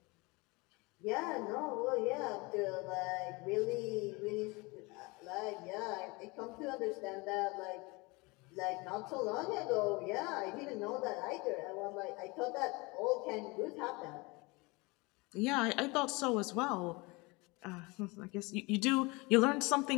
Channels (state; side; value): quieter; right; 25.7 dB